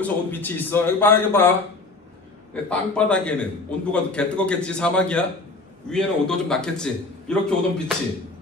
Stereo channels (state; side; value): quieter; right; 3.4 dB